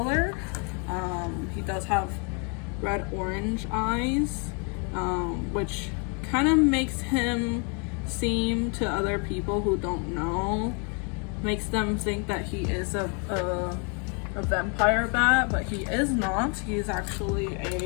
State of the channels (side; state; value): right; quieter; 37.0 dB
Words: He does have red orange eyes, which kind of makes him seem to other people who don't know, makes them think that he is a vampire bat, but he is not. He's actually